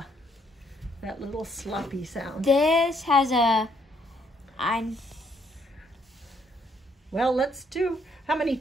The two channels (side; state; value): both; normal; correlation 0.70